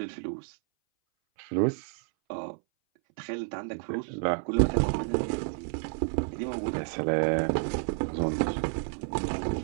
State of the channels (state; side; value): silent; left; 58 dB below the other